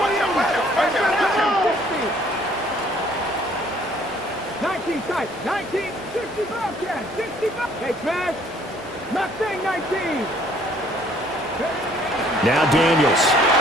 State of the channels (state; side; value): normal; both; correlation 0.60